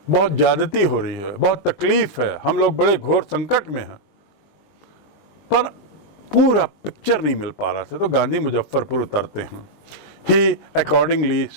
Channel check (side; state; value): right; late; 20 ms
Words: बहुत ज्यादती हो रही है, बहुत तकलीफ है, हम लोग बड़े घोर संकट में हैं, पर पूरा पिक्चर नहीं मिल पा रहा था। तो गांधी मुजफ्फरपुर उतरते हैं। He accordingly